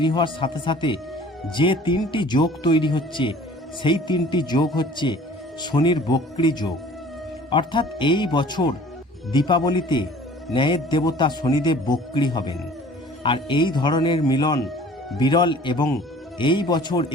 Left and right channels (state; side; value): normal; both; correlation 0.49